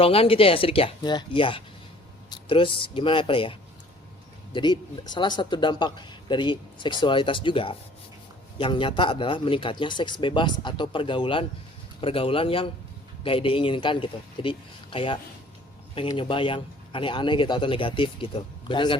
gitu ya, Sidik ya? Iya. Iya. Terus gimana ya? Jadi salah satu dampak dari seksualitas juga yang nyata adalah meningkatnya seks bebas atau pergaulan yang gak diinginkan gitu. Jadi kayak pengen nyoba yang aneh-aneh gitu atau negatif gitu. Benar nggak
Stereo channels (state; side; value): normal; both; correlation 0.53